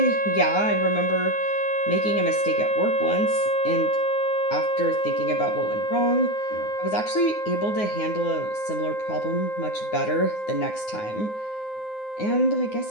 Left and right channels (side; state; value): right; late; 9.6 ms